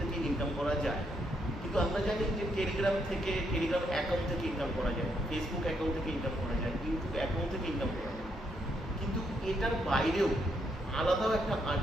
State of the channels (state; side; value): normal; both; correlation 0.76